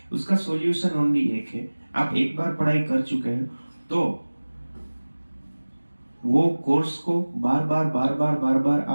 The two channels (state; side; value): inverted; both; correlation -1.00